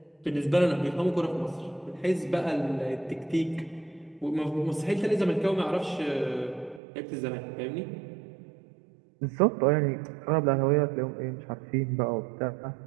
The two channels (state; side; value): drops out; left; at 6.8 s